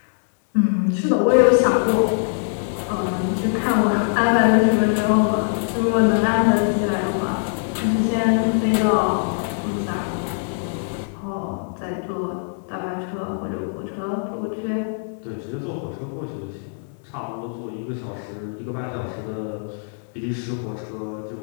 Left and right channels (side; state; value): right; silent; digital silence